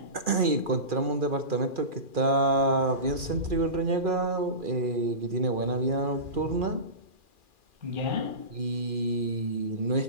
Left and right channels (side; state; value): left; late; 2.4 ms